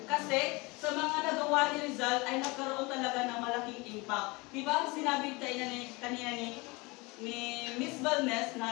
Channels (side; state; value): right; quieter; 25.4 dB